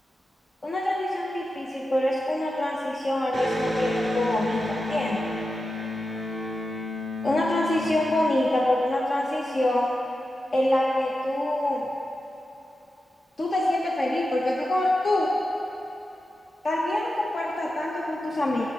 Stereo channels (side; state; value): both; normal; correlation 0.91